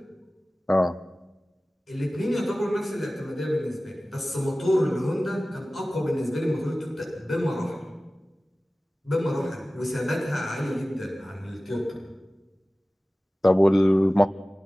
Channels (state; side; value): normal; both; correlation 0.97